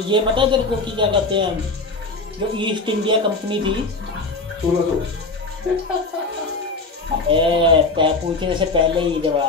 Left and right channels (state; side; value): quieter; right; 3.5 dB